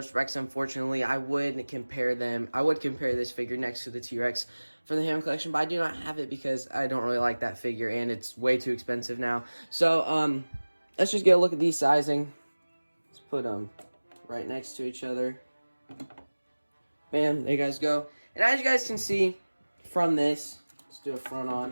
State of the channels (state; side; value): inverted; both; correlation -1.00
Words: Rex, unfortunately. I would compare this figure next to the T-Rex for the Hammond collection, but I do not have it because I don't really like that figure and it's way too expensive now. So, let's just get a look at these sizing. Let's put them right next to each other. Bam, there you guys go. And as you guys can see from this, let's do a front